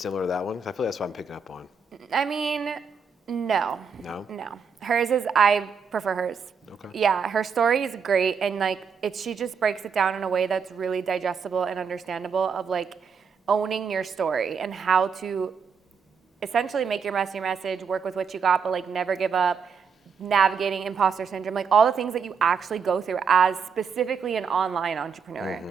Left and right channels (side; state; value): left; quieter; 6.0 dB